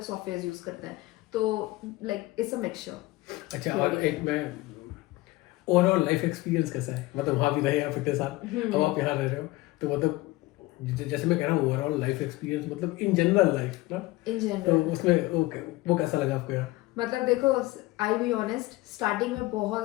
सॉफ्टवेयर यूज करते हैं, तो लाइक इट्स अ मिक्सचर। अच्छा, और एक मैं ओवरऑल लाइफ एक्सपीरियंस कैसा है, मतलब वहाँ भी रहे आप इतने साल, अब आप यहाँ रह रहे हो, तो मतलब जैसे मैं कह रहा हूँ ओवरऑल लाइफ एक्सपीरियंस, मतलब इन जनरल लाइफ ना, इन तो जनरल उसमें वो कैसा लगा आपको यार? मतलब देखो, आई बी ऑनेस्ट, स्टार्टिंग में बहुत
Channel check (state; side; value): quieter; right; 19.6 dB